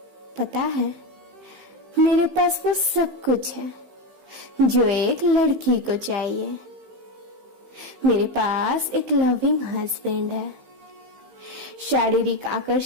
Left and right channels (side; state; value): left; late; 15 ms